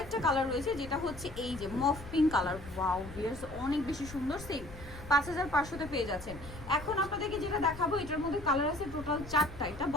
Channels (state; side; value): noise; left; rumble, 14 dB below the sound